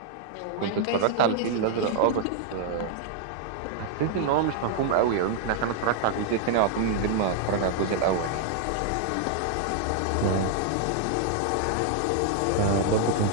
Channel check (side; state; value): both; different; correlation 0.00